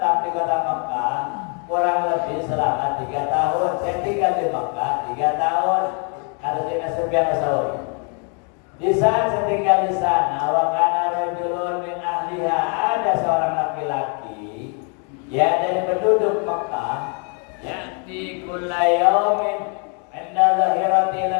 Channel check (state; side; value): quieter; right; 38.9 dB